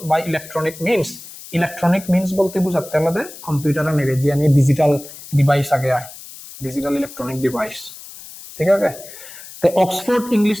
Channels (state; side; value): noise; left; hiss, 16 dB below the sound